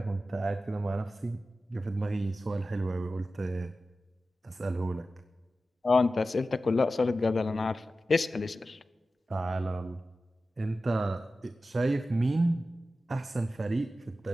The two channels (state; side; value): normal; both; correlation 0.94